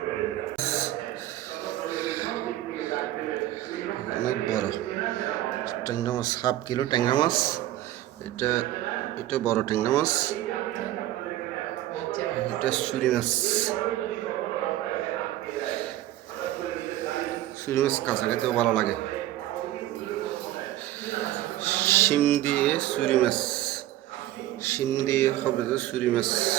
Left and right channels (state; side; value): quieter; left; 14.4 dB